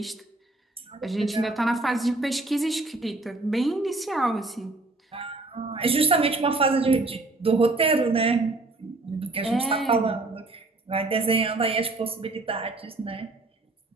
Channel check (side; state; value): left; quieter; 3.1 dB